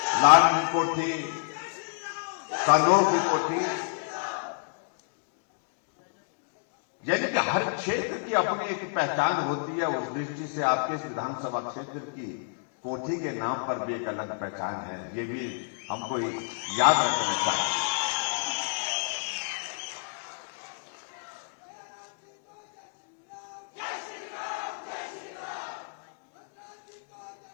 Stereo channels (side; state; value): right; silent; digital silence